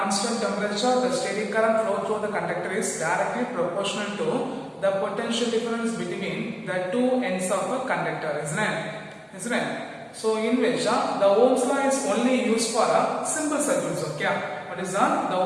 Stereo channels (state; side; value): identical; both; correlation 1.00